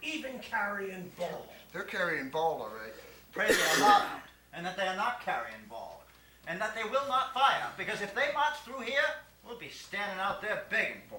even carrying ball. They're carrying ball, all right. Pray they are not out, and that they are not carrying ball, and that they will not fire, because if they march through here, we'll be standing out there begging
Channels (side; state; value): both; identical; correlation 1.00